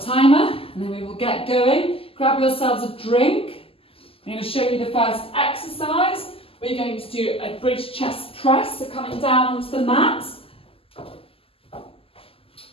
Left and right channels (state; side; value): late; right; 0.27 ms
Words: timer and then we will get going. Grab yourselves a drink. I'm going to show you the first exercise. We're going to do a bridge chest press, so coming down onto the mat.